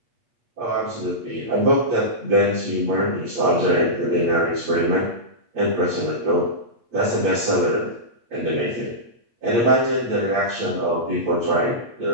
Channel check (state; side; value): late; left; 8.5 ms